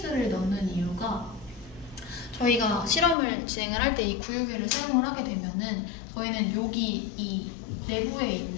넣는 이유가 저희가 실험을 진행을 할 때 이 구유계를 사용을 하게 되면은 저희는 여기 이 내부에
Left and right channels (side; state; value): right; drops out; at 3.2 s